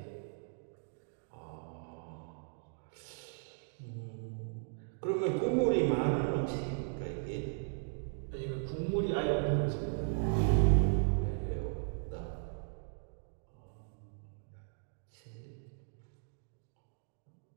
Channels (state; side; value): silent; left; digital silence